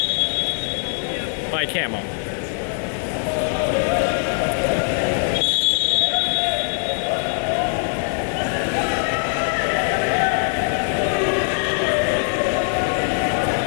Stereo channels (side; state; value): right; silent; 57 dB below the other